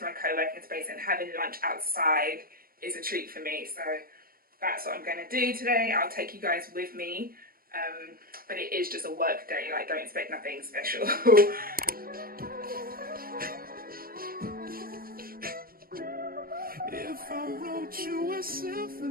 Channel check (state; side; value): late; left; 0.42 ms